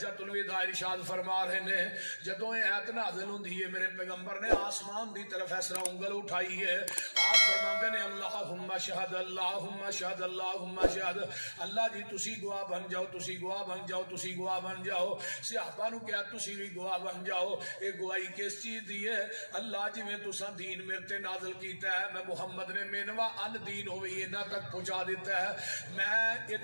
الوداع ارشاد فرما رہے نے۔ جدوں اے ایت نازل ہوندی ہے میرے پیغمبر نے آسمان دی طرف اس طرح انگل اٹھائی ہے، آپ فرماندے نے اللہم شہد اللہم شہد اللہم شہد، اللہ جی تسی گواہ بن جاؤ، تسی گواہ بن جاؤ، تسی گواہ بن جاؤ۔ صحابہ نو کہا تسی بھی گواہ بن جاؤ۔ اے گواہی کس چیز دی ہے؟ اللہ جی میں تساں دین میرے تے نازل کیتا ہے، میں محمد نے مینوا ان دین ہوئی انہاں تک پہنچا دیتا ہے، میں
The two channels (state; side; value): inverted; both; correlation -1.00